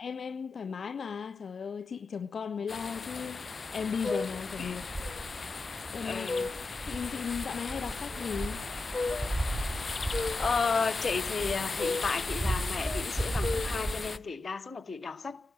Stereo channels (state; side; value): quieter; right; 3.2 dB